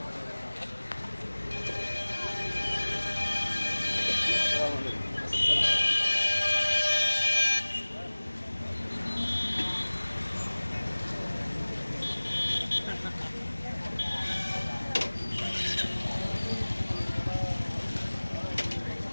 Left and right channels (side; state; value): both; inverted; correlation -1.00